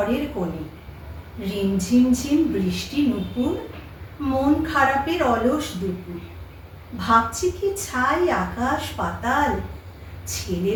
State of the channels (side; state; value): both; identical; correlation 1.00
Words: কোণে, রিমঝিমঝিম বৃষ্টি নুপুর, মন খারাপের অলস দুপুর। ভাবছি কি ছাই আকাশ পাতাল,